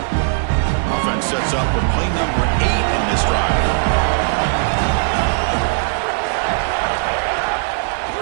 Offense sets up for play number 8 on this drive.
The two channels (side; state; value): left; silent; digital silence